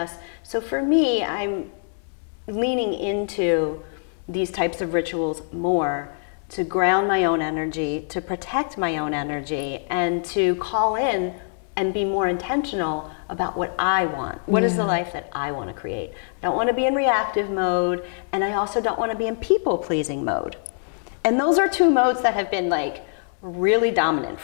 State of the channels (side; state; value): right; silent; digital silence